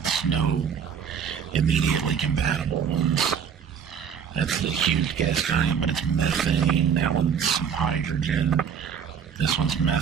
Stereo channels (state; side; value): quieter; left; 7.6 dB